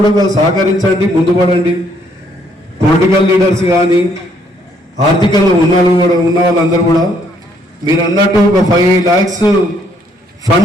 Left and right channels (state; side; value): normal; both; correlation 0.68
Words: సహకరించండి, ముందుపడండి. పొలిటికల్ లీడర్స్ కానీ ఆర్థికంగా ఉన్న వాళ్ళందరూ కూడా మీరు అన్నట్టు ఒక 5 lakhs